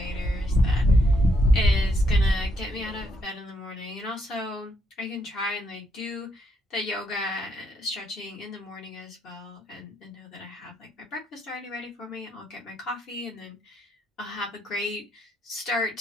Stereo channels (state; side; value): normal; both; correlation 0.75